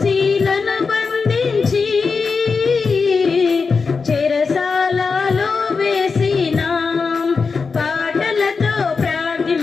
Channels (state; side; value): quieter; right; 4.8 dB